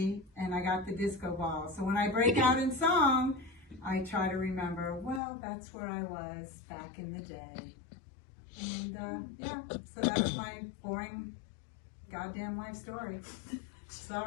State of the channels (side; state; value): right; drops out; at 5.2 s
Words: and I got the disco ball. So when I break out in song, I try to remember, well, that's where I was back in the day. And yeah, so that's my boring goddamn life story.